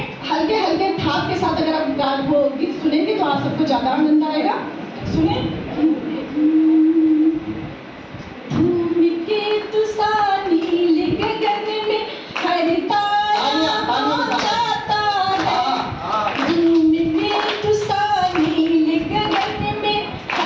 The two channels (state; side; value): identical; both; correlation 1.00